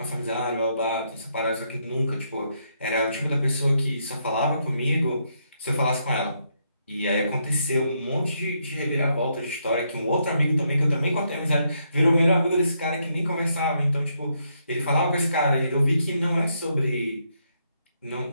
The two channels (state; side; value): inverted; both; correlation -0.77